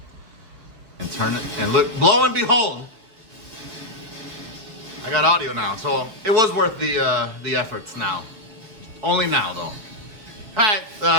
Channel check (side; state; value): left; late; 4.7 ms